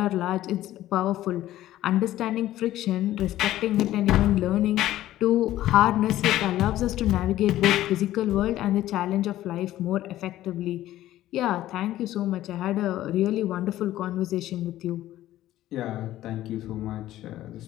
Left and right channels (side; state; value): right; quieter; 14.1 dB